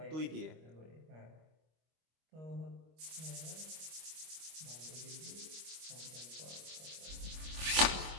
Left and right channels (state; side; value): late; left; 25 ms